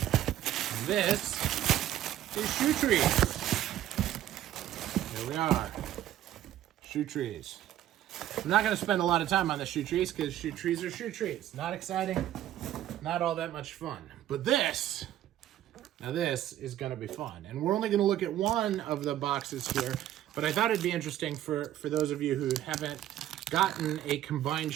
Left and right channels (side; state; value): left; quieter; 12.5 dB